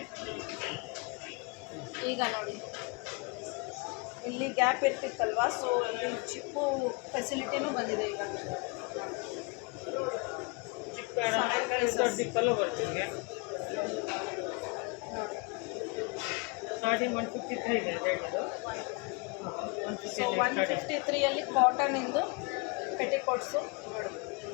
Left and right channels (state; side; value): quieter; right; 30.6 dB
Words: ಈಗ ನೋಡಿ ಇಲ್ಲಿ ಗ್ಯಾಪ್ ಇರ್ತಿತ್ತಲ್ವಾ, ಸೊ ಇಲ್ಲಿ ಚಿಪ್ಪು ಫೆಸಿಲಿಟಿನೂ ಬಂದಿದೆ ಈಗ. ಡಿಪ್ಪಲ್ಲೂ ಬರ್ತೀವಿ. ನೋಡಿ ಸ್ಟಾರ್ಟಿಂಗ್ 153 ಇದೆ ರೇಟ್ ಇದು. ಸೊ 153 ಕಾಟನ್ ಇಂದು ಪೆಟಿಕೋಟ್ಸು